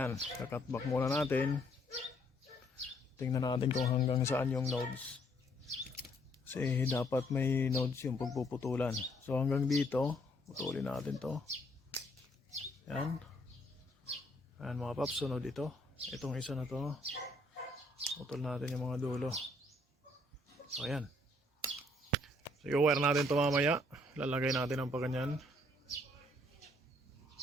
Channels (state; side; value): normal; both; correlation 0.67